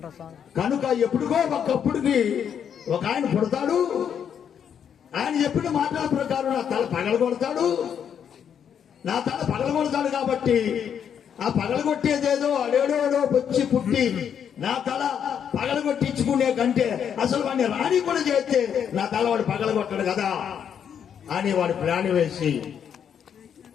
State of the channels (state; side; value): quieter; right; 8.2 dB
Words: కనుక ఎప్పుడుగో ఒకప్పుడుకి ఒక ఆయన పుడతాడు, ఆయన చెప్పిన మాటల ప్రకారం నా తల పగలగొడతాడు. నా తల పగలగొడతాడు కాబట్టి ఆ పగలగొట్టేదేదో అడేడోడో వచ్చి పుట్టి నా తల పగలగొట్టించుకునే కంటే అసలు వాడిని రాణి కూడా చేస్తే నా తల వాడు పగలగొట్టాడు కదా అని వాడు ప్లాన్ వేసి